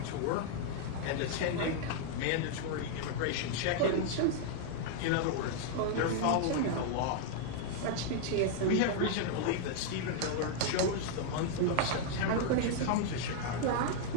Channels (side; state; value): both; different; correlation 0.00